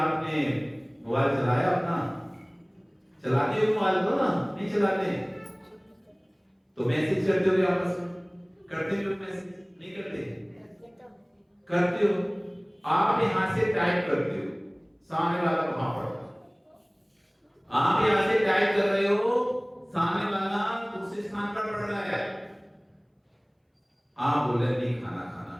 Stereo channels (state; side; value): identical; both; correlation 1.00